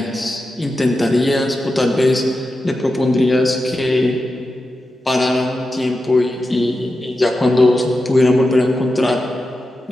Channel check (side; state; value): both; normal; correlation 0.90